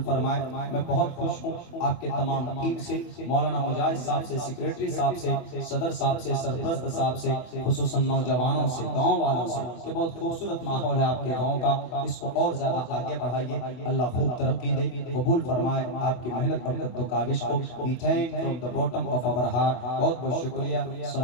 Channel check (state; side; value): late; right; 24 ms